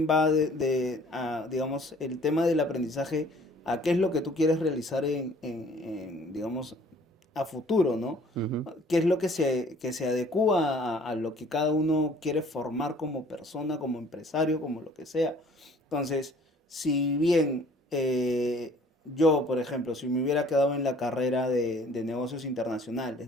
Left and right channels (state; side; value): normal; both; correlation 0.55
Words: va digamos, el tema del aprendizaje a qué es lo que tú quieres realizar digamos, a futuro, ¿no? Ujú, ¿Qué es lo que se adecúa a lo que cada uno quiere formar como persona, como empresario, como lo que sea? Entonces, si bien yo, por ejemplo, si me hubiera quedado en la carrera de negocios internacionales,